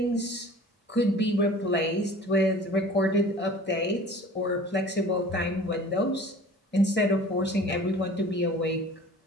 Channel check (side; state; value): both; normal; correlation 0.44